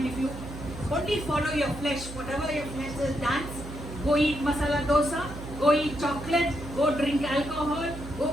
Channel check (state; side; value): noise; right; hum, 11 dB below the sound